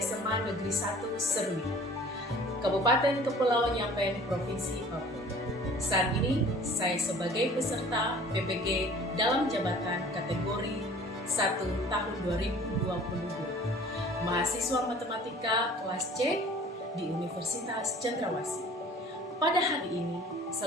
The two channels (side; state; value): both; normal; correlation 0.48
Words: Negeri 1 Serui, Kabupaten Kepulauan Yapen, Provinsi Papua. Saat ini, saya sebagai peserta PPG dalam jabatan kategori 1 tahun 2022, mahasiswa matematika kelas C di Universitas Cendrawasih. Pada hari ini,